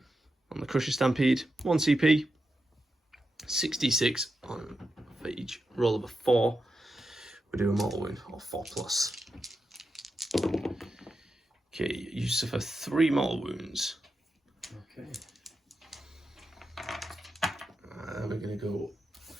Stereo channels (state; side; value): normal; both; correlation 0.88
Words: on the Crusher Stampede. 1 CP, 66 on for each roll of a 4. We do a mortal wound or 4+. Okay, you suffer 3 mortal wounds. Okay. We're going to go